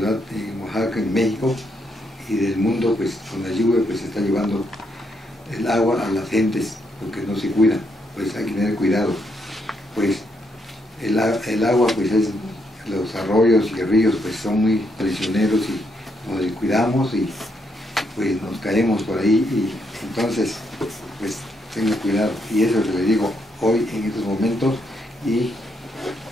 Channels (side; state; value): both; normal; correlation 0.77